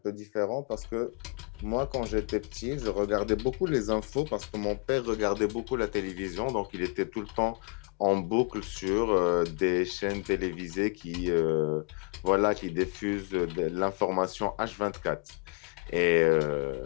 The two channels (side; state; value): right; quieter; 33.3 dB